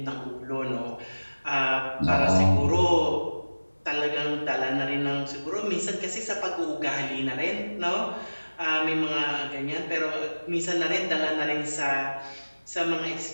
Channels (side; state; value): both; inverted; correlation -1.00